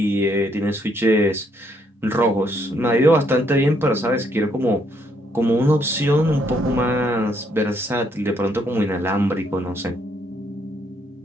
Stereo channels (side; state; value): both; normal; correlation 0.72